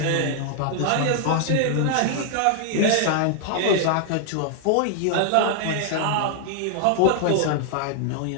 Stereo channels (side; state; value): both; different; correlation 0.00